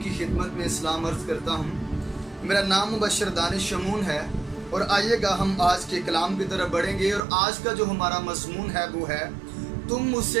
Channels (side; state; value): left; drops out; at 7.2 s